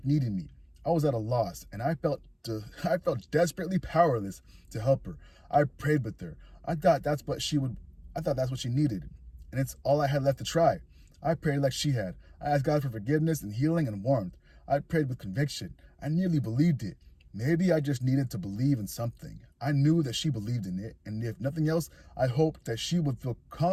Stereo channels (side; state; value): both; identical; correlation 1.00